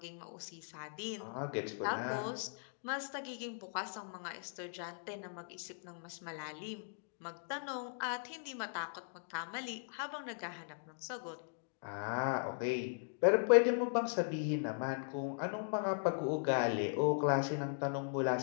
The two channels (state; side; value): silent; right; digital silence